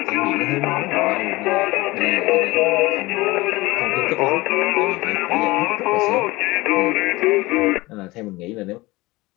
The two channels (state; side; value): quieter; right; 21.0 dB